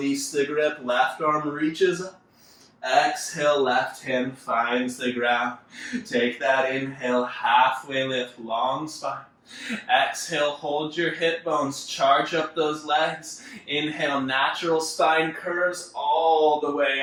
the grip. Left arm reaches up. Exhale, left hand finds the ground. Take that inhale, halfway lift, long spine. Exhale, hold your hip bones, charge up those legs. Inhale, natural spine curves all the way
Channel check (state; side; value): identical; both; correlation 1.00